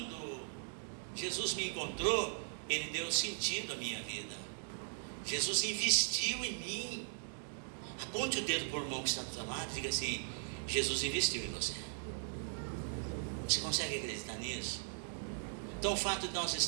Jesus me encontrou, Ele deu sentido à minha vida. Jesus investiu em mim. Aponte o dedo para o irmão que está do seu lado e diga assim: Jesus investiu em você. Você consegue acreditar nisso? Então o fato de nós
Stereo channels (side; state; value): left; silent; digital silence